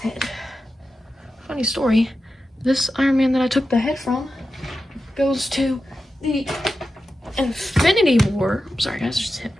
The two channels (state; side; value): normal; both; correlation 0.92